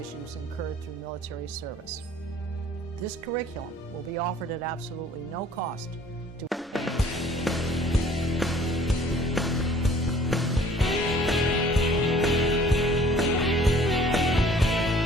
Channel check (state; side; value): normal; both; correlation 0.54